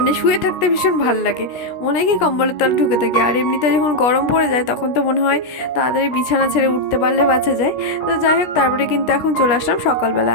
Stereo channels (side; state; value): right; late; 17 ms